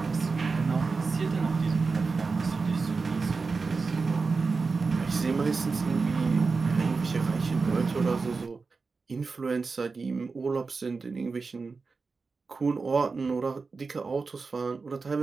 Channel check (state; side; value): quieter; left; 4.4 dB